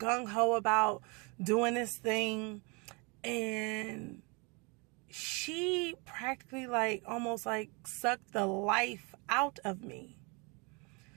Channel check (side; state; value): left; quieter; 30.6 dB